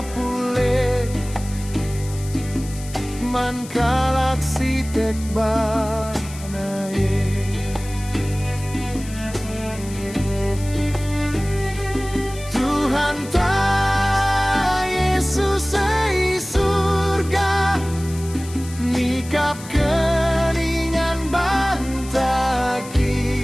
man kalak si tek banae Tuhan ta Yesus ei surga nikap keningan bantaki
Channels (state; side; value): noise; left; hiss, 16 dB below the sound